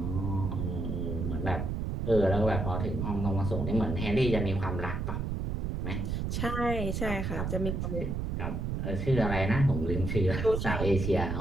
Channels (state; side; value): noise; right; rumble, 2 dB below the sound